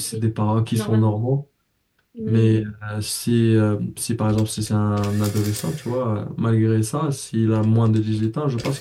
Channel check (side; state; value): both; identical; correlation 1.00